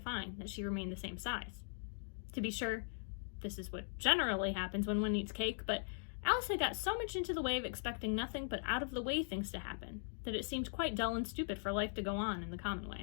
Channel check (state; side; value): silent; right; digital silence